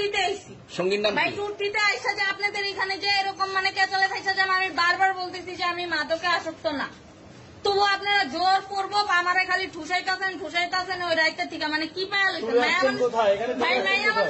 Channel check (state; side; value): identical; both; correlation 1.00